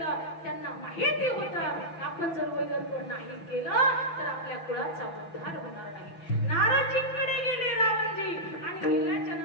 त्यांना माहिती होतं आपण जर वैरत्व नाही केलं तर आपल्या कुळाचा उद्धार होणार नाही. नारदजींकडे गेले रावणजी आणि गेल्याच्या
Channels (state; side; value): late; right; 6.0 ms